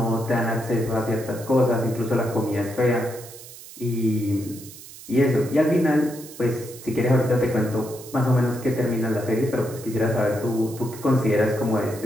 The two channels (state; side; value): noise; right; hiss, 16 dB below the sound